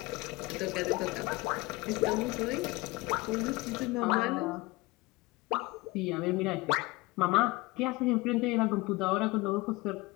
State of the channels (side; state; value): right; quieter; 22.2 dB